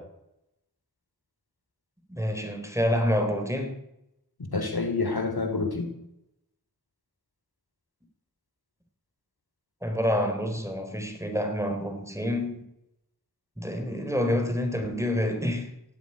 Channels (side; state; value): both; normal; correlation 0.55